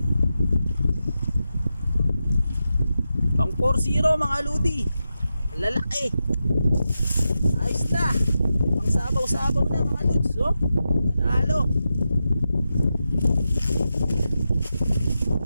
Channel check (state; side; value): inverted; both; correlation -0.89